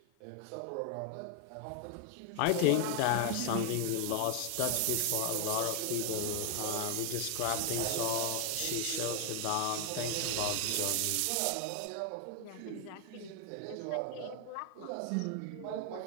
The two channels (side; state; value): both; different; correlation 0.01